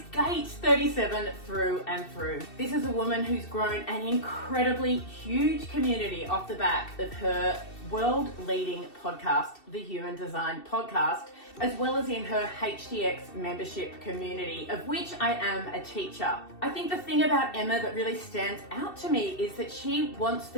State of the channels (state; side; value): late; right; 2.7 ms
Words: gate 37 through and through. This is a woman who's grown an incredibly huge community off the back of her world-leading podcast, the Human Design Podcast, as well as in her HDX membership community, of which I am a teacher. I think the thing about Emma that really stands out to me is that she wants